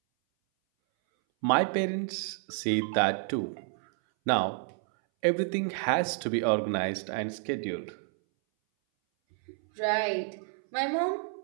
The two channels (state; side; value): silent; left; 58 dB below the other